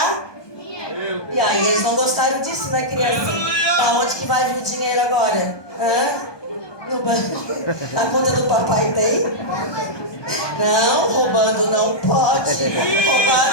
E aí eles não gostaram disso, né, criança? Da onde que vai vir o dinheiro agora? No banco? A conta do papai tem? Não, roubando não pode. Roubar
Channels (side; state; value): right; late; 1.2 ms